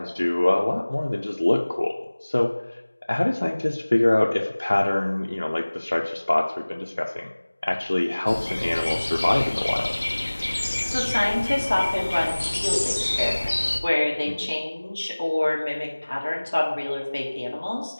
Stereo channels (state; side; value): inverted; both; correlation -1.00